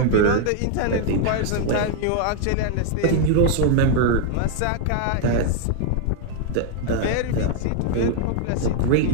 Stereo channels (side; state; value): both; different; correlation 0.00